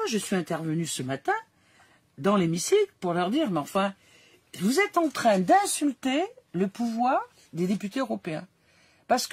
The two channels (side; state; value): both; identical; correlation 1.00